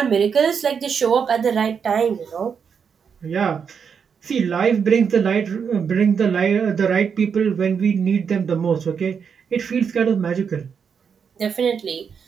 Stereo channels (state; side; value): quieter; left; 6.7 dB